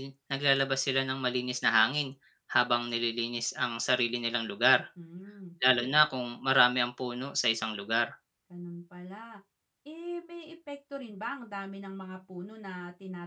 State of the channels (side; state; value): both; identical; correlation 1.00